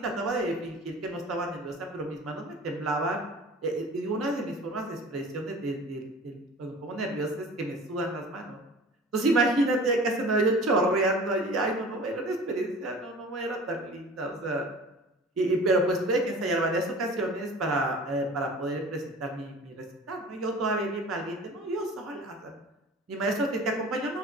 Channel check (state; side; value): normal; both; correlation 0.42